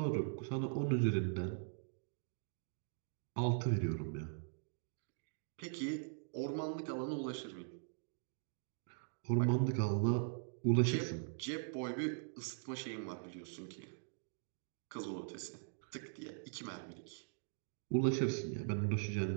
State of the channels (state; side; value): silent; left; digital silence